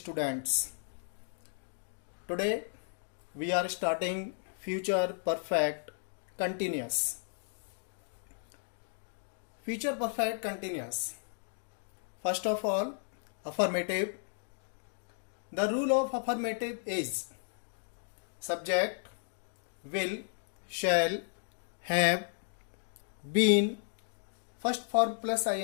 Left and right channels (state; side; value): silent; right; digital silence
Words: Today we are starting future perfect continuous. Future perfect continuous. First of all, affirmative. The rule of affirmative is subject, will, shall, have, been, first form plus